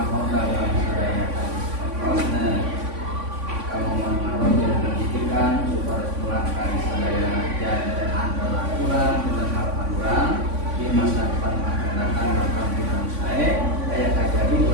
dalam sadaya prosesnya, kamu mau pendidikan supaya pulang kali sadaya dan antara kurang dengan harapan kurang di masa depan akan datang akan kita saya kayak jadi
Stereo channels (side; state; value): left; late; 3.5 ms